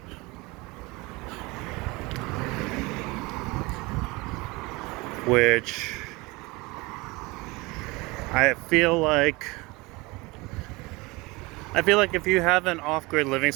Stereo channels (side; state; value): left; quieter; 24.0 dB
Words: Which I feel like if you have an off-grid living